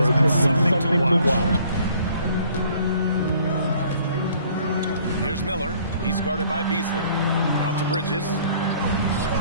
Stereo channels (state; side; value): inverted; both; correlation -0.58